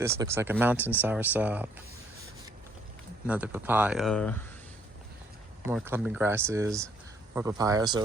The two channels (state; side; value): normal; both; correlation 0.65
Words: looks like a mountain soursop. Another papaya, more clumping grasses, more papaya.